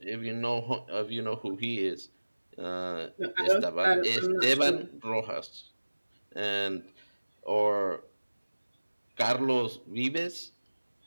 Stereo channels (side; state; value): both; inverted; correlation -1.00